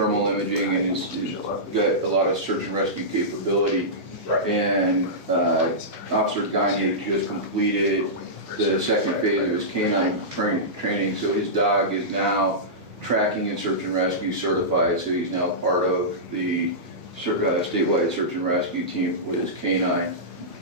imaging and has got a lot of search and rescue capability. Right. And Officer Gagne just completed the second phase of his canine training, so his dog is now tracking and search and rescue certified, so he's now part of the statewide search and rescue team with his canine.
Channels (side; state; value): right; late; 1.7 ms